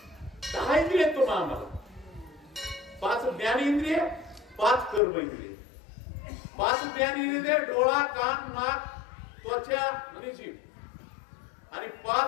10 इंद्रिय तुम्हाला आम्हाला 5 ज्ञान इंद्रिय, 5 कर्म इंद्रिय. 5 ज्ञान इंद्रिय डोळा, कान, नाक, त्वचा आणि जीभ आणि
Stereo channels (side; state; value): right; drops out; at 5.0 s